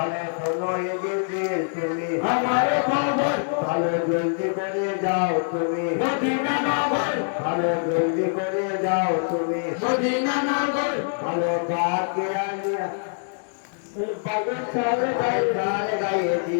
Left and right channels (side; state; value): right; silent; digital silence